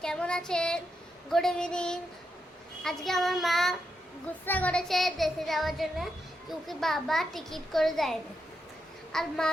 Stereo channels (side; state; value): both; normal; correlation 0.84